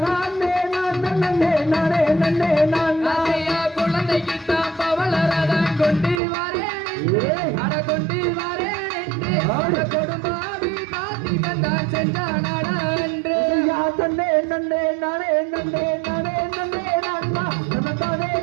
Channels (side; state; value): left; drops out; at 6.2 s